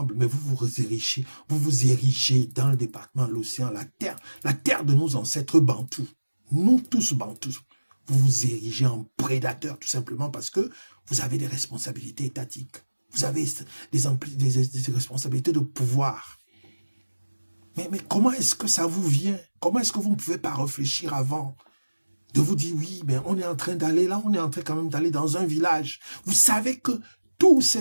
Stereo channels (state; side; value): inverted; both; correlation -1.00